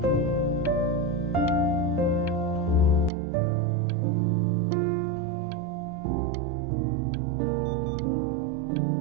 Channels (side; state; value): left; drops out; at 3.1 s